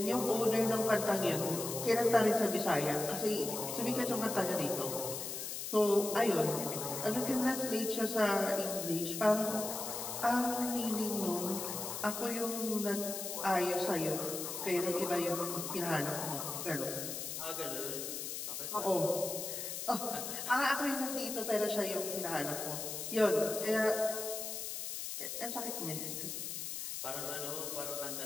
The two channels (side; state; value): left; noise; hiss, 5 dB below the sound